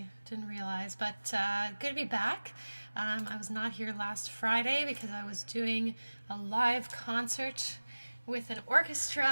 didn't realize, but good to be back. I was not here last Friday because I was doing a live concert with an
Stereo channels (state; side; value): inverted; both; correlation -1.00